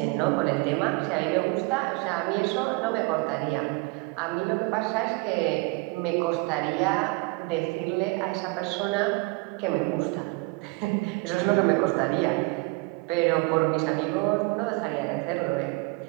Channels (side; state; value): left; quieter; 26.5 dB